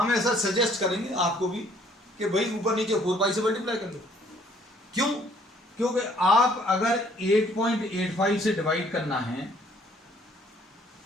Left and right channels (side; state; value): both; normal; correlation 0.61